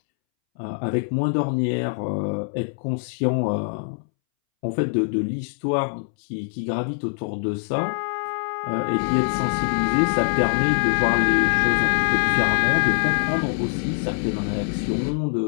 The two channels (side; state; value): right; silent; 63 dB below the other